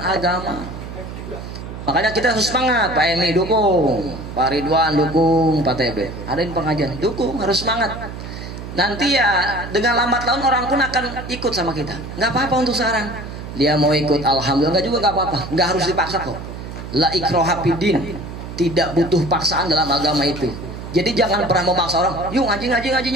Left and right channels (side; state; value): right; noise; hum, 10 dB below the sound